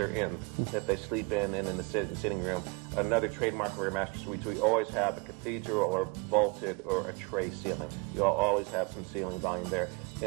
in, that they sleep in, and in the sitting room. Another trademark of our master suites, we always have a cathedral or vaulted or a tray ceiling. You'll always have some ceiling volume there.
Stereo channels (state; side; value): quieter; left; 29.0 dB